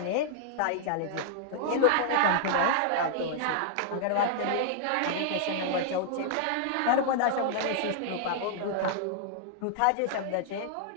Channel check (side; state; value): both; different; correlation -0.01